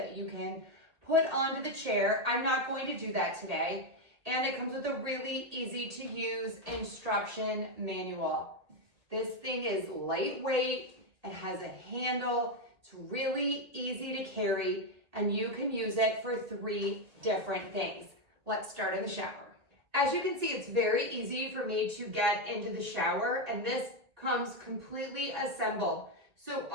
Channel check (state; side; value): late; left; 1.8 ms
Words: you can put onto the chair. I'm not going to do that today. And it comes with a really easy to use instruction manual. This thing is lightweight, it has a handle, it's really easy to carry, and you can use it for 3 different things. Let's start in the shower. As you can see, it's very easy for me to get into the shower, and this comes completely assembled. So